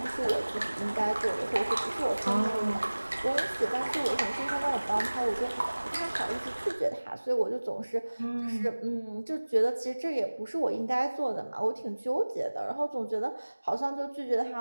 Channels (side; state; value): both; inverted; correlation -1.00